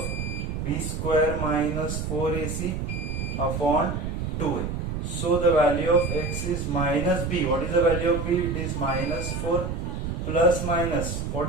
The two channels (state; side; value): noise; right; rumble, 3 dB below the sound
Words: b square minus 4ac upon 2a. So the value of x is minus b. What is the value of b? It is minus 4 plus minus,